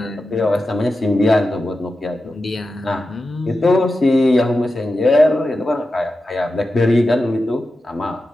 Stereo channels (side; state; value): both; normal; correlation 0.92